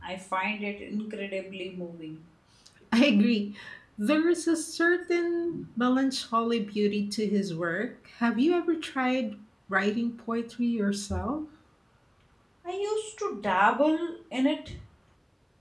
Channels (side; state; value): both; identical; correlation 1.00